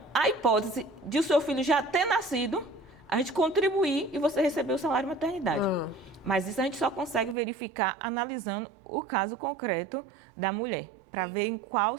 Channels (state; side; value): drops out; left; at 7.4 s